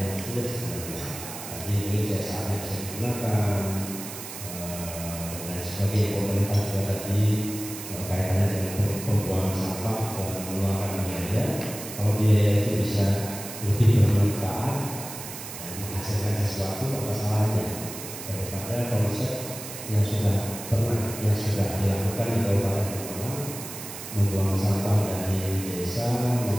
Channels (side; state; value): right; noise; hiss, 10 dB below the sound